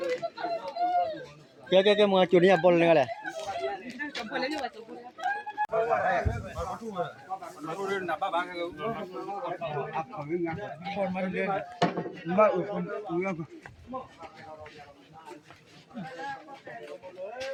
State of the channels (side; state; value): both; identical; correlation 1.00